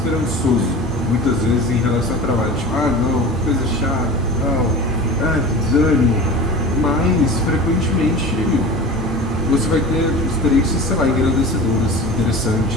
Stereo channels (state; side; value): normal; both; correlation 0.35